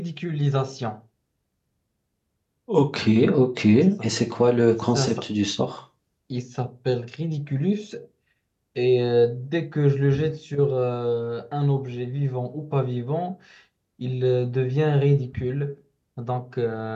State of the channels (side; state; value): both; identical; correlation 1.00